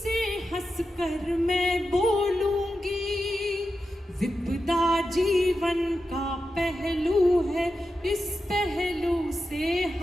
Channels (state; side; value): normal; both; correlation 0.90